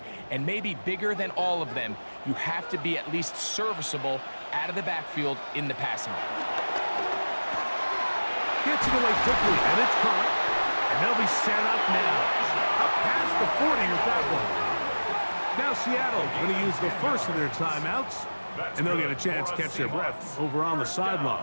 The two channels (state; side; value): inverted; both; correlation -1.00